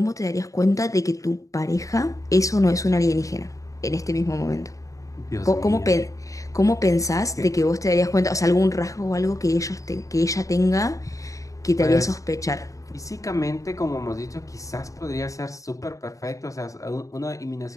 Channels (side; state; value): right; late; 0.16 ms